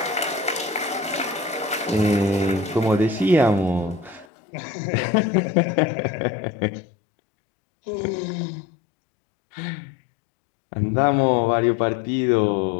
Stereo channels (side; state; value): right; drops out; at 4.2 s